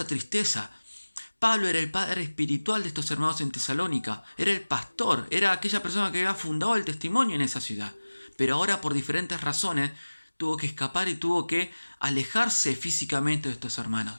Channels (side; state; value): both; inverted; correlation -1.00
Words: tristeza. Pablo era el padre espiritual de estos hermanos en Tesalónica, era el pastor, era aquella persona que había fundado el testimonio en esa ciudad. Pero ahora, por diferentes razones, tuvo que escapar y tuvo que alejarse físicamente de estos hermanos.